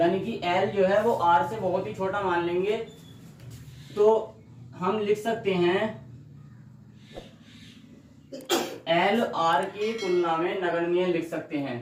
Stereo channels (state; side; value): identical; both; correlation 1.00